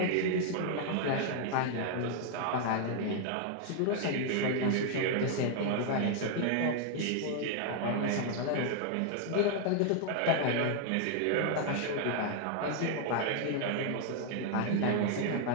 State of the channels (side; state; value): both; different; correlation 0.00